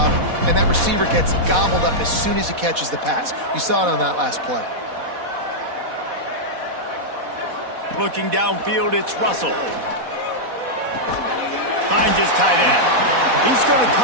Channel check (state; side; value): late; left; 4.1 ms